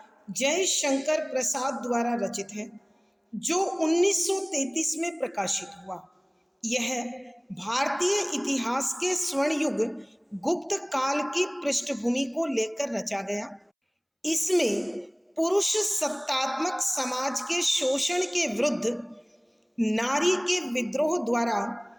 जयशंकर प्रसाद द्वारा रचित है, जो 1933 में प्रकाशित हुआ। यह भारतीय इतिहास के स्वर्ण युग गुप्त काल की पृष्ठभूमि को लेकर रचा गया। इसमें पुरुष सत्तात्मक समाज के शोषण के विरुद्ध नारी के विद्रोह द्वारा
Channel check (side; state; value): both; identical; correlation 1.00